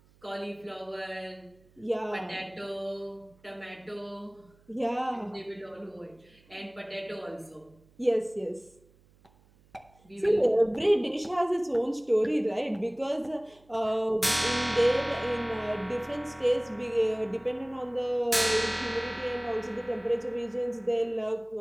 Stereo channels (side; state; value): right; noise; hum, 30 dB below the sound